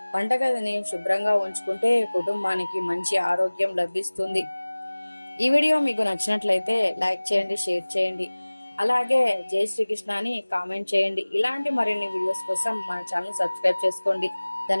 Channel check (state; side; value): inverted; both; correlation -1.00